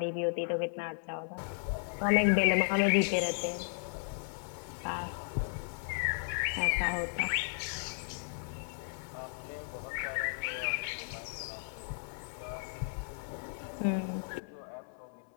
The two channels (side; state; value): right; silent; 55 dB below the other